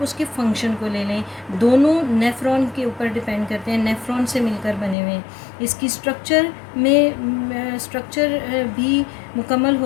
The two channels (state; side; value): drops out; right; at 5.0 s